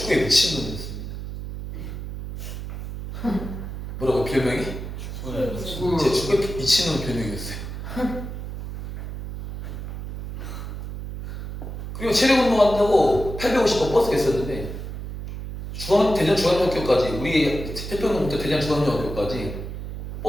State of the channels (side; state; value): right; noise; hum, 8 dB below the sound